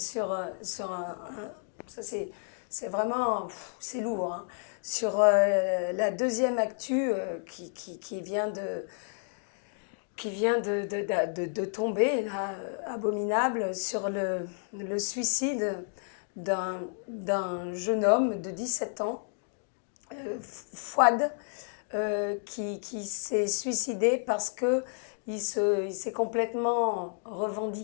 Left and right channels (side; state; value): right; silent; digital silence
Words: ça c'est vraiment, c'est lourd, hein. Sur la deuxième actu qui vient de tomber, là, abominable, sur le suicide d'un jeune homme de 17 ans, Fouad, qui s'est suicidé parce que il s'est complètement